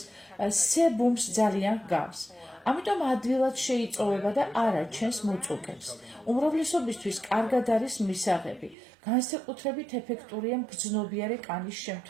სებუმს ძალიან გავს. ამიტომ ადვილად შეიწოვება და არ აჩენს მუწუკებს. უმრავლესობისთვის კარგად არის მისაღები. განსაკუთრებით ეფექტურია მგრძნობიარე კანის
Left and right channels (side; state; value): left; drops out; at 8.8 s